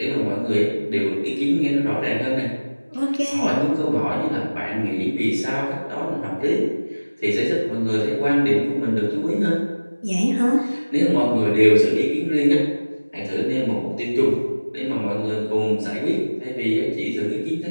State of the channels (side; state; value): both; inverted; correlation -1.00